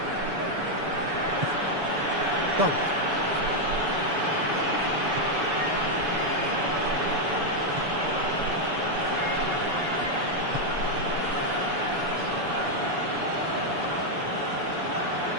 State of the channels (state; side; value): late; left; 7.0 ms